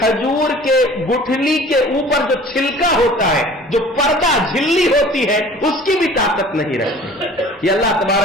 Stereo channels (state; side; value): normal; both; correlation 0.47